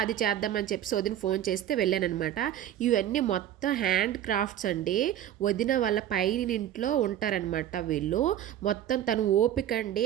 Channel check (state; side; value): quieter; left; 11.3 dB